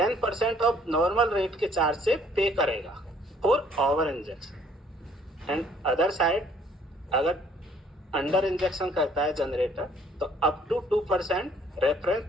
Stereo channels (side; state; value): both; normal; correlation 0.60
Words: ऑफ नॉर्मल रेट के चार्ज से पे करेगा for over injection. And other side अगर अंडर इंजेक्शन करता है जनरेटर तो up to 2% reference